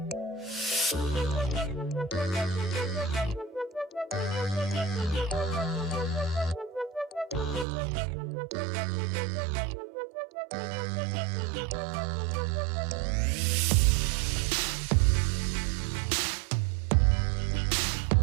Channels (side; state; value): left; drops out; at 7.7 s